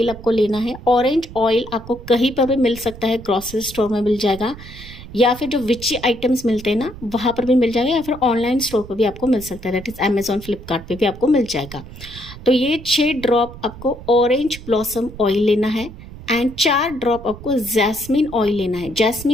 आपको लेना है। ऑरेंज ऑयल आपको कहीं पर भी मिल सकता है, ग्रॉसरी स्टोर में मिल जाएगा या फिर जो विची आइटम्स मिलते हैं ना वहाँ पर भी मिल जाएगा, या फिर ऑनलाइन स्टोर पर भी आपको मिल सकता है, दैट इज़ अमेजॉन, फ्लिपकार्ट पे भी आपको मिल जाएगा। तो ये 6 ड्रॉप आपको ऑरेंज ब्लॉसम ऑयल लेना है एंड 4 ड्रॉप आपको जैस्मिन ऑयल लेना है।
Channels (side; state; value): right; noise; rumble, 15 dB below the sound